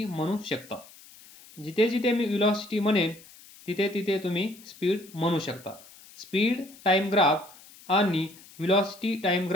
म्हणू शकता. जिथे जिथे मी velocity म्हणेन तिथे तिथे तुम्ही स्पीड म्हणू शकता. स्पीड टाइम ग्राफ आणि velocity टाइम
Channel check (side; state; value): left; noise; hiss, 22 dB below the sound